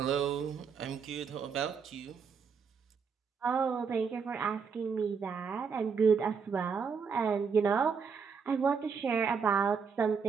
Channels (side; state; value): left; quieter; 5.9 dB